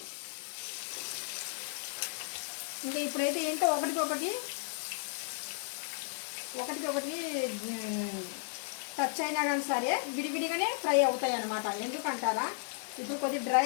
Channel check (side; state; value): right; silent; 55 dB below the other